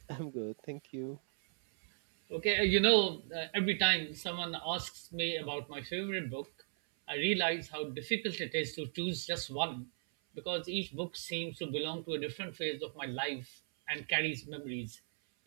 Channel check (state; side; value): silent; left; 53 dB below the other